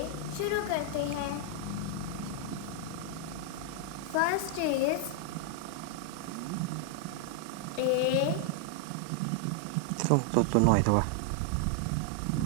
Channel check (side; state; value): both; different; correlation 0.00